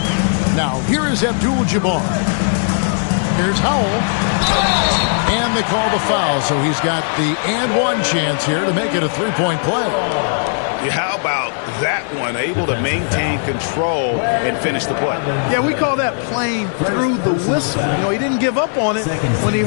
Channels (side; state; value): right; silent; 68 dB below the other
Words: Now, here is Abdul-Jabbar. Here's Howell. And they call the foul, so he's got the and one chance here to make it a 3-point play. How about that one? Able to maintain control and finish the play. Yeah, we call that playing through the whistle. You know, he didn't give up on it when he